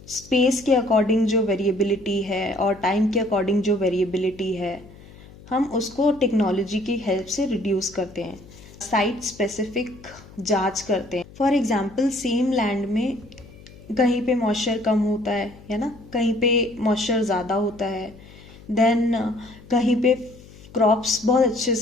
space के according जो variability है और time के according जो variability है, हम उसको टेक्नोलॉजी की हेल्प से रिड्यूस करते हैं. साइट स्पेसिफिक जांच करते हैं. फॉर एग्जांपल, सेम लैंड में कहीं पे मॉइस्चर कम होता है ना, कहीं पे मॉइस्चर ज़्यादा होता है. देन कहीं पे क्रॉप्स बहुत अच्छे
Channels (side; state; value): left; noise; hum, 21 dB below the sound